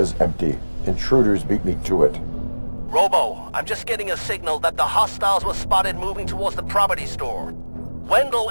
empty. Intruders beat me to it. Robo, I'm just getting a signal that the hostiles were spotted moving towards the property store. Wendell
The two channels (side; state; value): both; inverted; correlation -1.00